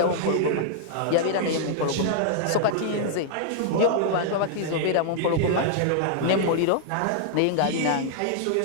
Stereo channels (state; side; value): different; both; correlation -0.01